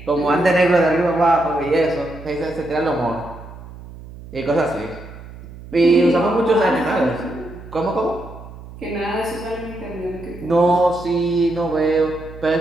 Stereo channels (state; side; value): noise; right; hum, 16 dB below the sound